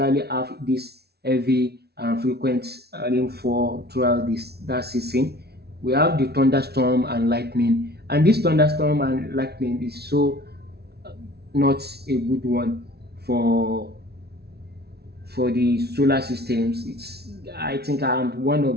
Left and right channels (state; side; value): late; left; 0.47 ms